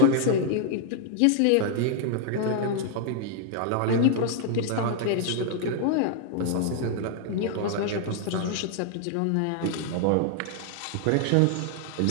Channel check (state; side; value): different; both; correlation 0.00